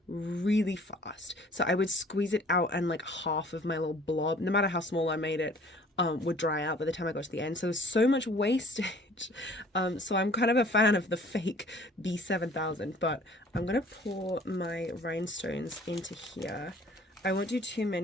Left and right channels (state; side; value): normal; both; correlation 0.53